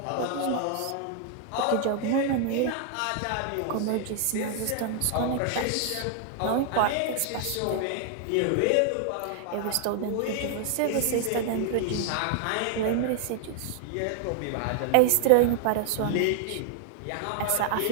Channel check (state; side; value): different; both; correlation 0.00